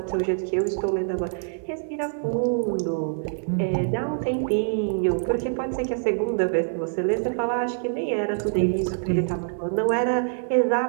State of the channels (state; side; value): silent; left; digital silence